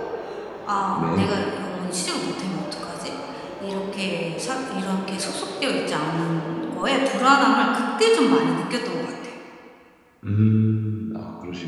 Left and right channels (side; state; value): both; identical; correlation 1.00